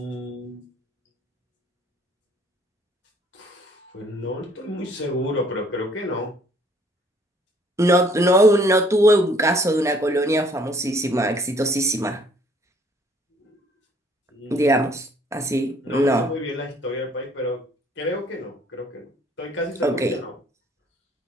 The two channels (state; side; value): normal; both; correlation 0.60